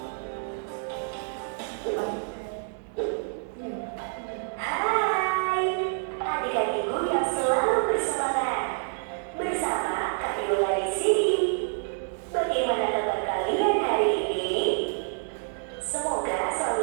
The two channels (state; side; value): silent; left; digital silence